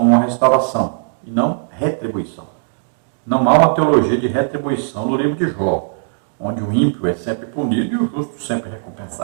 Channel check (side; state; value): left; silent; digital silence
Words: uma restauração e não retribuição. Não há uma teologia de retribuição no livro de Jó, onde o ímpio é sempre punido e o justo sempre